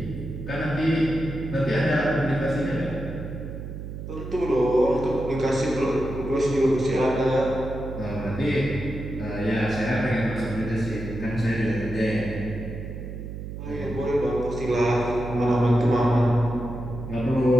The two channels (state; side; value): noise; right; hum, 9 dB below the sound